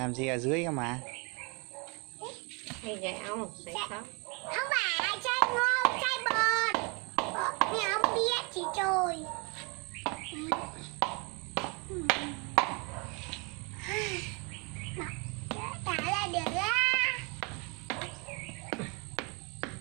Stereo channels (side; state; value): left; quieter; 31.5 dB